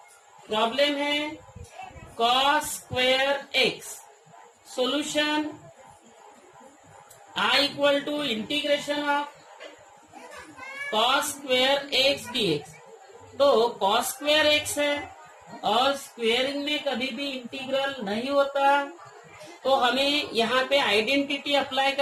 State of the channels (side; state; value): both; identical; correlation 1.00